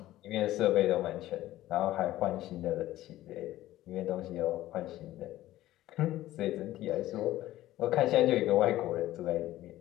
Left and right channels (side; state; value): right; quieter; 15.1 dB